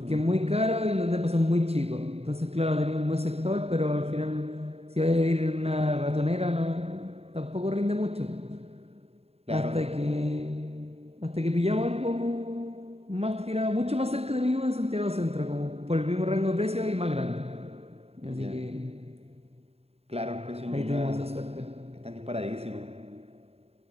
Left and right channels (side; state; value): left; late; 0.29 ms